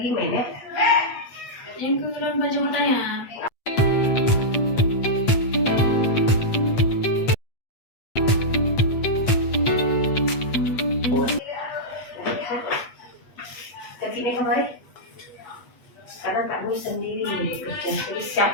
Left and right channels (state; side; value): late; right; 8.3 ms